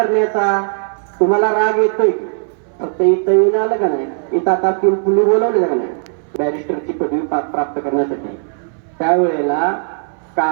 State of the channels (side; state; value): left; silent; 63 dB below the other